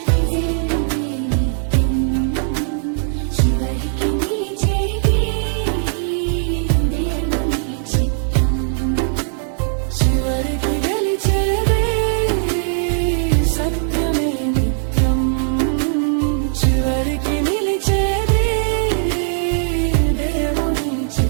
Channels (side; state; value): left; silent; digital silence